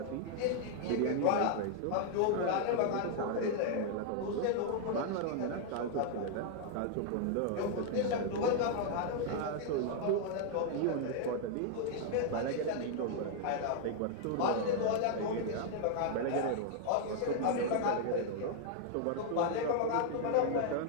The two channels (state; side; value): different; both; correlation 0.00